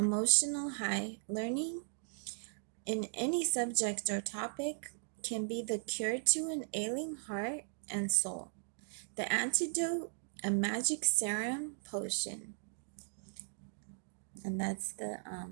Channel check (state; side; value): silent; left; digital silence